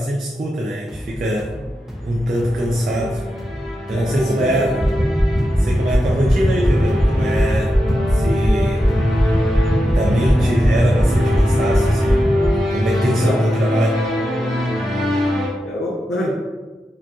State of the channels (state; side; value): normal; both; correlation 0.88